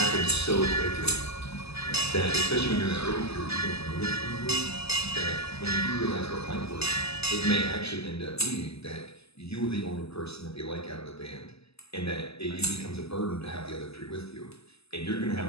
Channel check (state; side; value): late; right; 0.78 ms